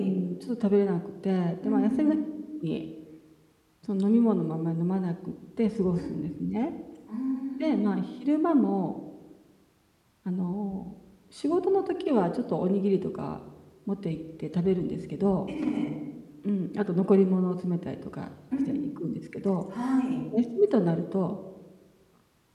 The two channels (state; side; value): identical; both; correlation 1.00